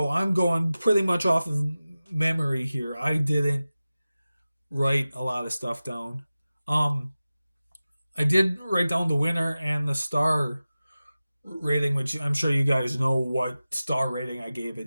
I'm going pretty much off of memory here. I didn't write a lot of stuff down. Um, I did write down the winner and the star rating, which I'm sure you guys know what star rating I gave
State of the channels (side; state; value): both; inverted; correlation -0.96